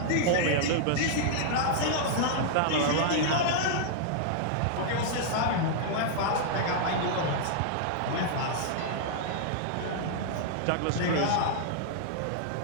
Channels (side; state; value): both; different; correlation -0.01